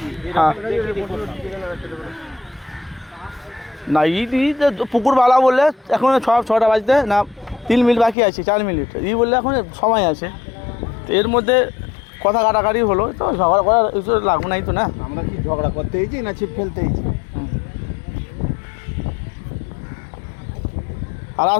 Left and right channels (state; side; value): drops out; right; at 8.2 s